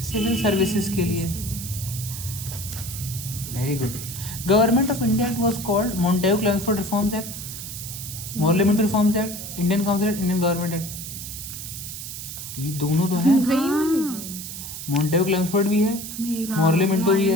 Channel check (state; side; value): noise; right; hiss, 9 dB below the sound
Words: सिविल सर्विसेज के लिए। Very good. Government of India it was called Montagu Chelmsford reforms act, parliament reforms act, Indian council act, Indian government act. ये दोनों तो हैं। मॉन्टेगू क्लेमेंसफोर्ड भी है, पार्लियामेंट भी